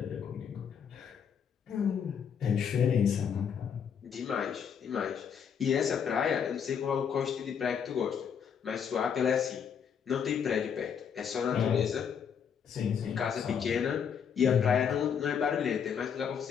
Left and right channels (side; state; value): right; quieter; 7.5 dB